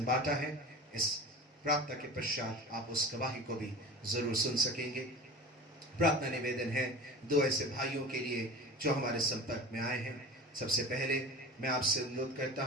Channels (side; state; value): both; normal; correlation 0.35